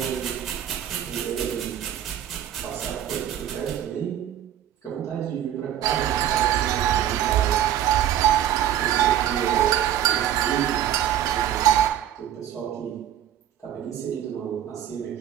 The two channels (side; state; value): left; quieter; 11.3 dB